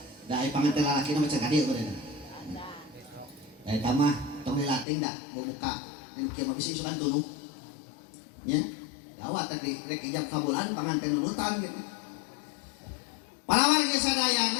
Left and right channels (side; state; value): right; drops out; at 4.9 s